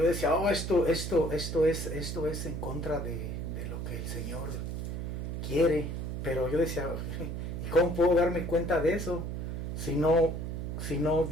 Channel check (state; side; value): noise; right; hum, 4 dB below the sound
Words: decía, esto es en contra de lo que el Señor quiere, pero yo decía, ¿y cómo puedo darme cuenta de eso si no